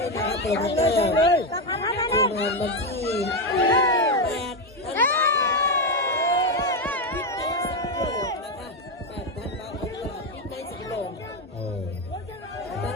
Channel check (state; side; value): normal; both; correlation 0.08